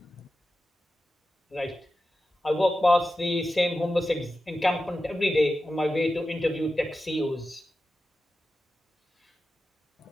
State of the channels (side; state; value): both; normal; correlation 0.92